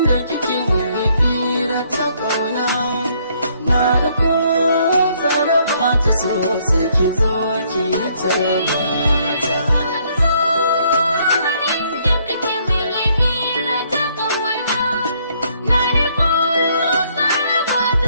kike mun fira ta kauna na da ko zara ba ta so sai ki zo ki tarba ta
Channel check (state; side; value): inverted; both; correlation -0.68